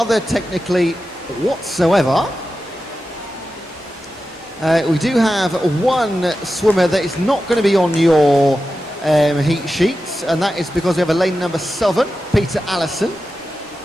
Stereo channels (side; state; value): both; normal; correlation 0.92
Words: technically whatsoever. We do have one swimmer that is not going to be on your heat sheets, and that is because we have a lane number 7, Peter Allison.